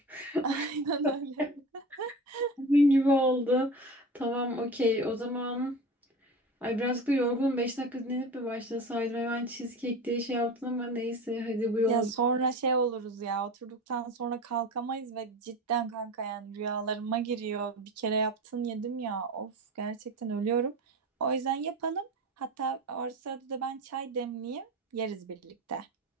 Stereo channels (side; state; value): both; normal; correlation 0.31